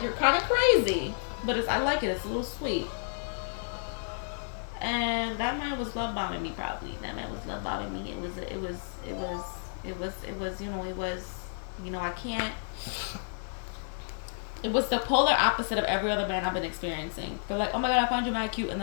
you're kind of crazy, but I like it. It's a little sweet. And that man was love bombing me, probably. That man was love bombing me. I can't. It was the polar opposite of every other man I've been experiencing. They're like, oh my God, I find you mad cute, and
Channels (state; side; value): silent; right; 56 dB below the other